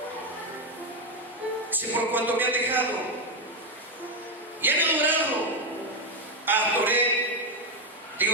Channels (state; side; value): normal; both; correlation 0.06